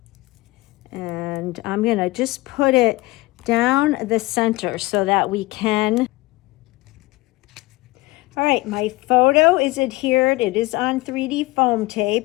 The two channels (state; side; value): quieter; right; 20.5 dB